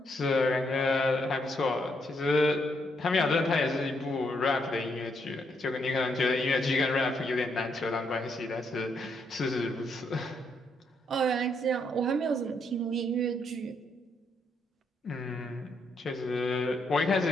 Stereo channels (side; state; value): both; normal; correlation 0.76